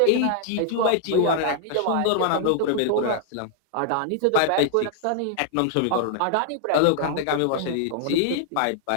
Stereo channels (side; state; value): both; different; correlation 0.00